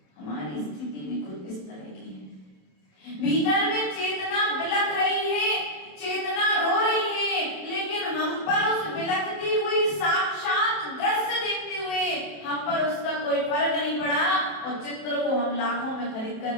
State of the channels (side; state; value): right; late; 27 ms